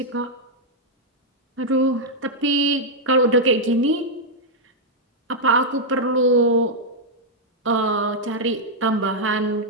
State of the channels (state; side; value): normal; both; correlation -0.04